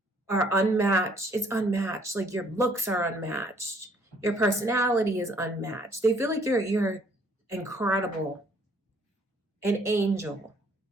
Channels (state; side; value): normal; both; correlation 0.62